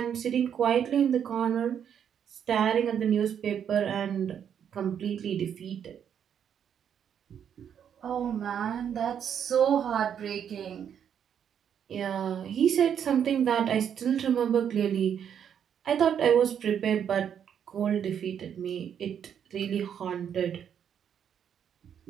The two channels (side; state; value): left; quieter; 8.5 dB